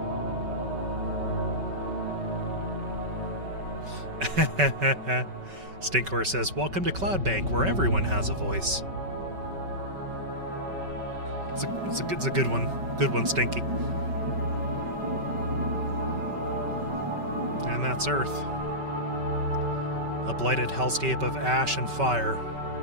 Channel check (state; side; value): late; left; 5.2 ms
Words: Stinkor says, "Welcome to Cloudbank, where everyone has a voice." It's a good one. Good one, Stinky. And that's Earth. A blighted hellscape of ash and fire.